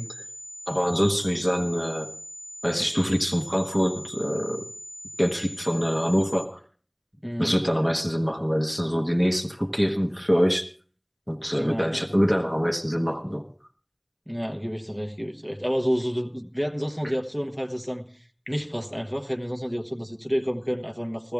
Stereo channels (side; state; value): both; identical; correlation 1.00